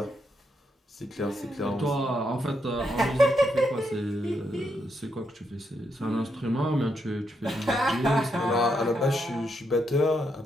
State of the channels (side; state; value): both; normal; correlation 0.80